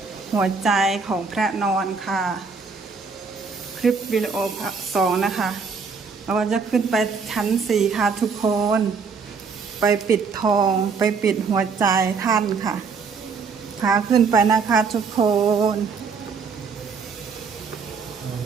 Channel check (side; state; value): left; quieter; 5.3 dB